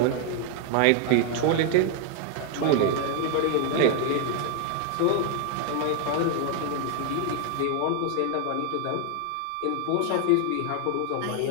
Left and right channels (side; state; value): both; different; correlation 0.00